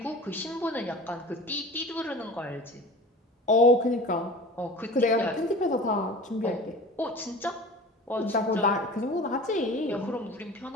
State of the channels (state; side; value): normal; both; correlation 0.37